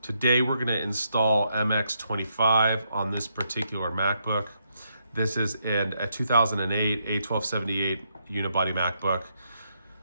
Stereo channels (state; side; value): inverted; both; correlation -0.78